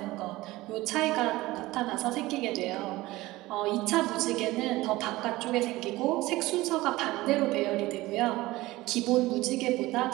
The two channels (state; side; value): quieter; left; 18.8 dB